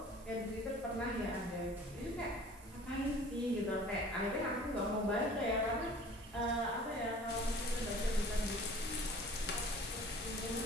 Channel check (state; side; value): normal; both; correlation 0.47